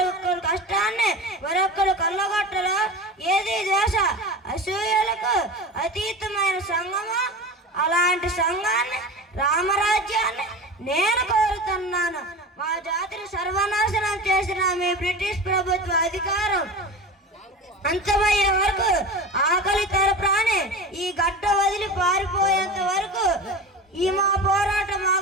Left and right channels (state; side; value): normal; both; correlation 0.30